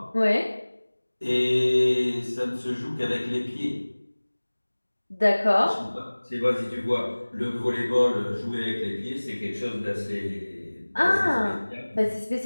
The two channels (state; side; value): inverted; both; correlation -1.00